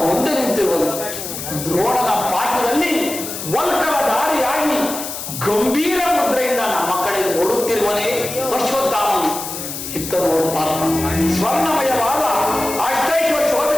ಮುಂದೆ ನಿಂತಿರುವನು. ದ್ರೋಣನ ಪಾಠದಲ್ಲಿ ವಲ್ಕಲ ದಾರಿಯಾಗಿ ಗಂಭೀರ ಮುದ್ರೆಯಿಂದ ನಮ್ಮ ಕಡೆ ನೋಡುತ್ತಿರುವನೇ ಅಶ್ವತ್ಥಾಮನು. ಇತ್ತರು ಪಾರ್ಥ, ಸ್ವರ್ಣಮಯವಾದ ಅಷ್ಟೈಶ್ವರ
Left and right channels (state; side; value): noise; left; hiss, 7 dB below the sound